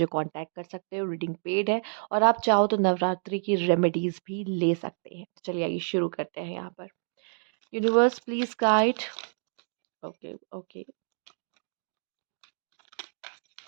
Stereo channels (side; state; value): left; silent; digital silence